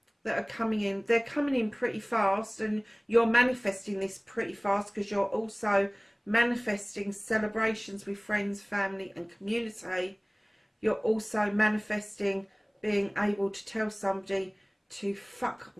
that are coming in. They're coming in pretty fast, and you're manifesting this pretty fast because you're also manifesting celebrations with friends, family and community. You're also manifesting being able to tell somebody to fuck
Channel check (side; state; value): both; identical; correlation 1.00